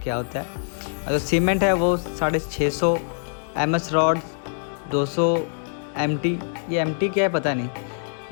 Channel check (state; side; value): silent; right; digital silence